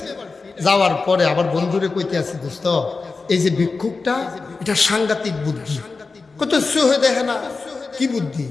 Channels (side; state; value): right; quieter; 4.2 dB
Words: যাওয়ার পরে আবার বন্ধুরে কইতে আছি, দোস্ত এই যে ভিক্ষুকটা এটা সাংঘাতিক বুদ্ধি, কত হয়ে দেখে না কি বুদ্ধি।